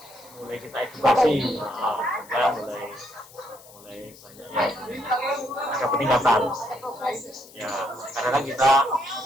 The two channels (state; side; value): noise; left; hiss, 22 dB below the sound